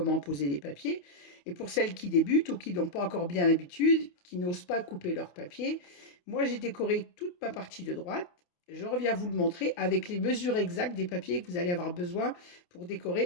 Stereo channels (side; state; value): right; late; 28 ms